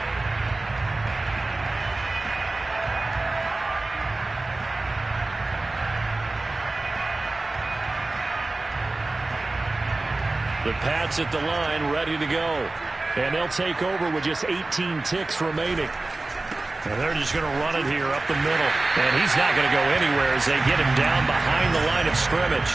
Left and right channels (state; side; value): quieter; left; 3.1 dB